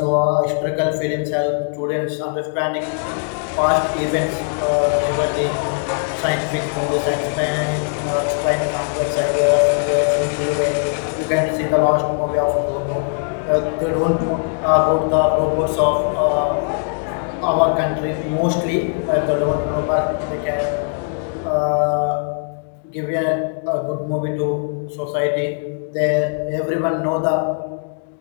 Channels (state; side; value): silent; right; 66 dB below the other